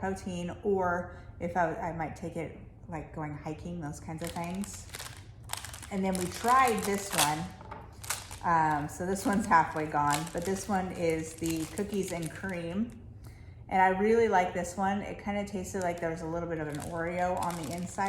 or if I might take it like going hiking, those kinds of things. And then we tried this one. So this one's halfway gone, but this one is the cookies and cream. And I really like this one. It kind of tasted like there was a little bit of an Oreo on the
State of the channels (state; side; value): identical; both; correlation 1.00